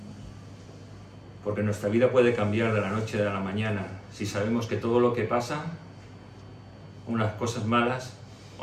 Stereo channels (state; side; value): identical; both; correlation 1.00